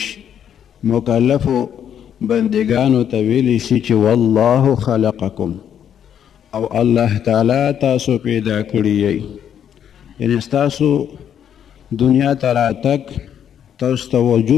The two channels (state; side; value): quieter; right; 9.1 dB